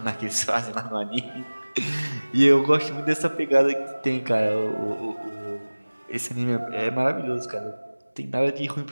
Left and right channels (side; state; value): both; inverted; correlation -1.00